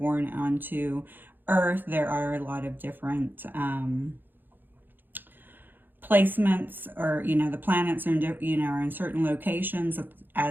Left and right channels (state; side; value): late; left; 0.093 ms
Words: onto Earth, there are a lot of different placements, or, you know, the planets are, you know, are in certain locations